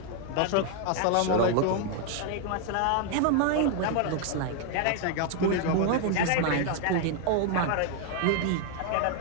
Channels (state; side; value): different; both; correlation 0.00